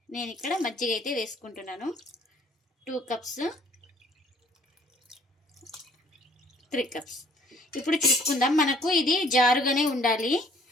నేను ఇక్కడ మజ్జిగ అయితే వేసుకుంటున్నాను. 2 కప్స్, 3 కప్స్. ఇప్పుడు చూసుకుందాం. మనకు ఇది జారుగానే ఉండాలి.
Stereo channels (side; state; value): both; normal; correlation 0.58